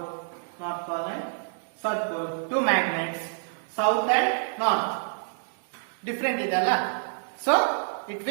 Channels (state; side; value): silent; left; 60 dB below the other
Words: north pole and south pole, two magnets, south and north different ಇದಲ್ಲ, so it